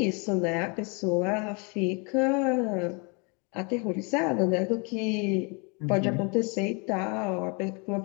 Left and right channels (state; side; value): quieter; right; 32.7 dB